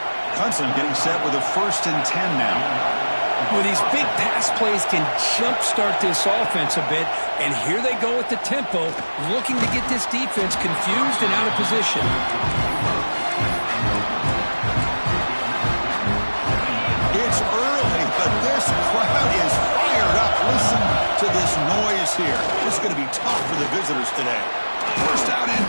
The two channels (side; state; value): both; inverted; correlation -1.00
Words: Clemson getting set with a 1st and 10 now. Well, these big pass plays can jumpstart this offense a bit, and here they go at the tempo, looking to get this defense confused and out of position. It's early, but this crowd is fired up. Listen to this noise here. It's going to be tough for the visitors today. First down and